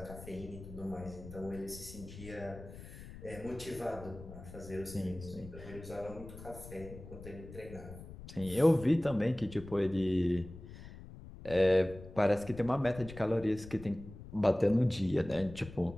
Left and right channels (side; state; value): left; noise; rumble, 14 dB below the sound